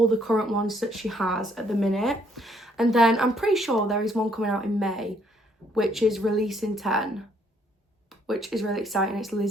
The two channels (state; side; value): normal; both; correlation 0.68